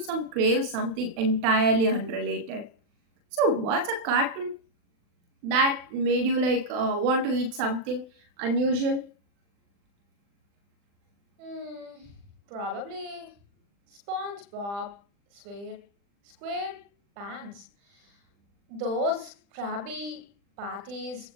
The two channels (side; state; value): left; late; 40 ms